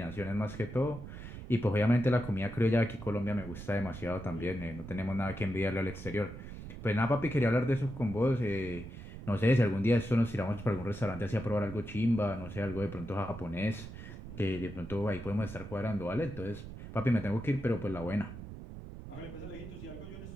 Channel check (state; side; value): noise; right; rumble, 11 dB below the sound